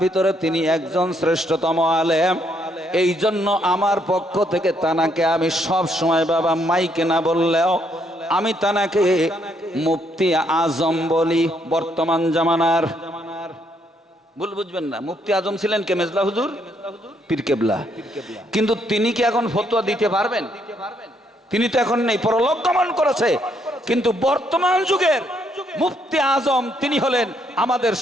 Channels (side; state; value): both; normal; correlation 0.73